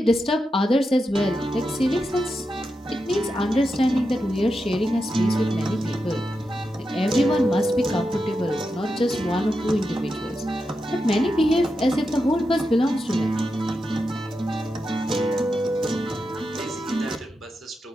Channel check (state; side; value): normal; both; correlation 0.88